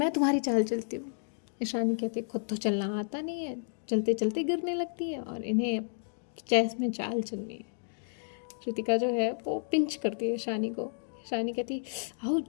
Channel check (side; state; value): right; silent; digital silence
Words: तुम्हारी चाल चलती हूँ। ईशानी कहती है खुद तो चलना आता नहीं है, चलते चलते गिरने लगती है और इन्हें चेस में चाल चलनी है। रितिका जो है वो पिंच करती है ईशानी को। ईशानी कहती है